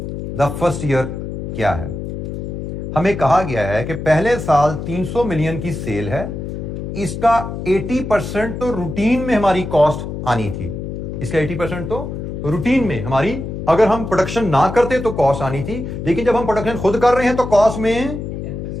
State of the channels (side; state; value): left; noise; hum, 6 dB below the sound